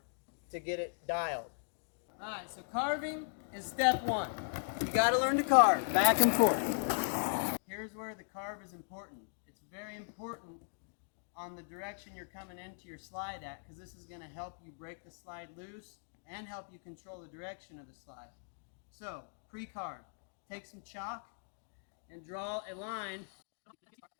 to get it dialed. Alright, so carving is step one. You got to learn to carve back and forth. Here's where the carve is important. It's very important on the direction you're coming into your slide at, because this is going to help you break the slide loose and help you control the direction of the slide. So, pre-carve. Take some chalk and draw a line,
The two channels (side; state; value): right; silent; digital silence